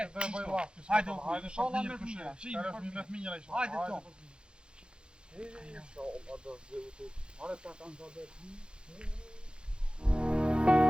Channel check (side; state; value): left; late; 0.051 ms